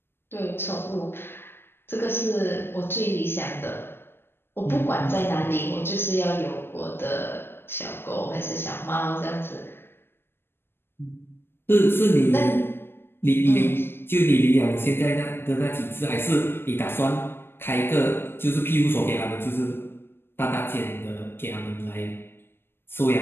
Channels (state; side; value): late; right; 0.11 ms